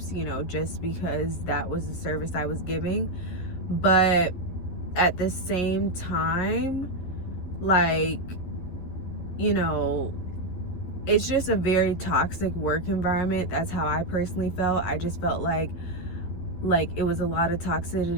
you know, just because that was the service I was giving. But at the same time, like, you know, it's just a very toxic work environment. That's how I personally felt. I just felt like it was a lot of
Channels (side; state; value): right; late; 12 ms